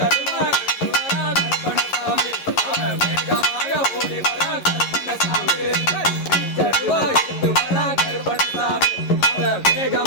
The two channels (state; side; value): late; right; 11 ms